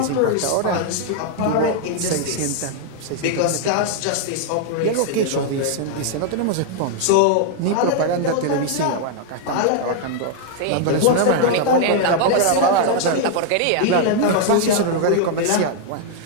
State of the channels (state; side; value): different; both; correlation 0.00